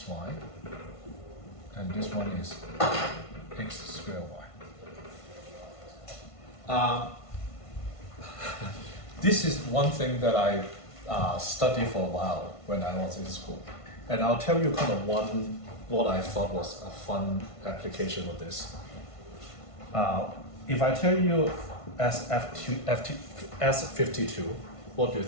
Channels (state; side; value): late; right; 1.5 ms